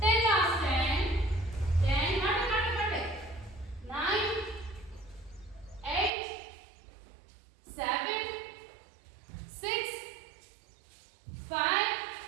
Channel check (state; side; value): drops out; left; at 6.1 s